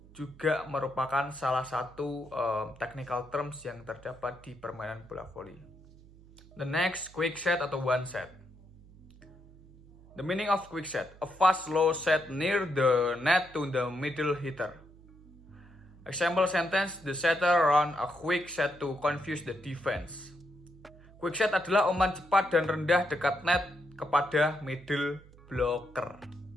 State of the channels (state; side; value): noise; right; hum, 23 dB below the sound